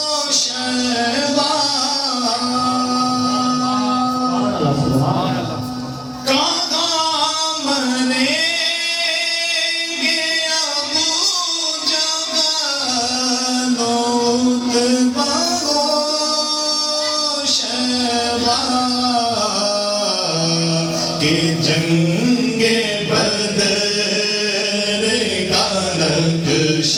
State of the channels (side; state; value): both; identical; correlation 1.00